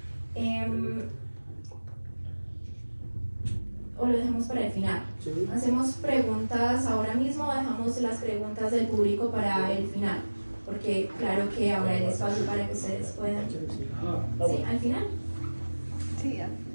O lo dejamos para el final. ¿Sí? ¿Hacemos preguntas ahora mismo o dejamos las preguntas del público para el final? Porque claro que habrá el espacio para que ustedes puedan. ¿Sí? ¿Al final? Sí, ya.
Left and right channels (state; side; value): inverted; both; correlation -1.00